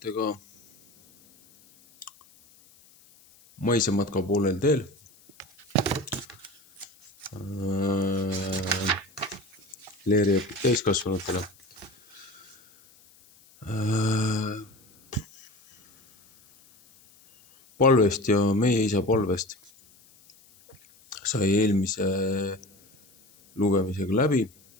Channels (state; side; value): noise; left; hiss, 28 dB below the sound